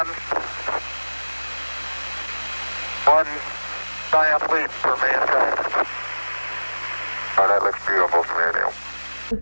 one giant leap for mankind. Oh, that looks beautiful to me, Neil.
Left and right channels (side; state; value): both; inverted; correlation -1.00